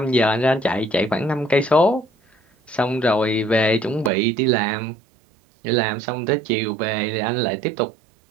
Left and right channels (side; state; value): left; drops out; at 4.1 s